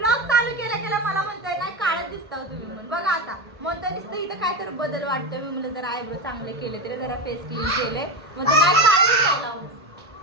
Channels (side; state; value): both; normal; correlation 0.17